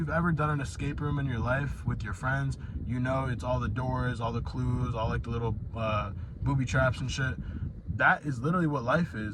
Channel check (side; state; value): both; identical; correlation 1.00